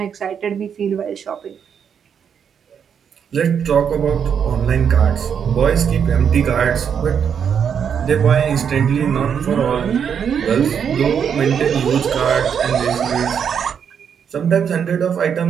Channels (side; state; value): left; quieter; 7.6 dB